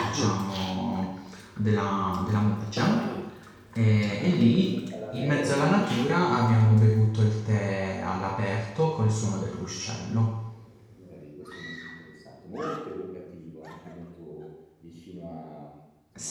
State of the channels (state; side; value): identical; both; correlation 1.00